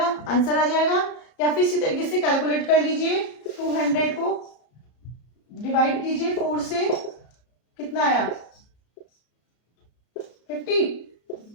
आंसर आ जाएगा। या फिर इसी तरीके से कैलकुलेट कर लीजिए, 200 को डिवाइड कीजिए 4 से, कितना आया 50।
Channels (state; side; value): late; right; 33 ms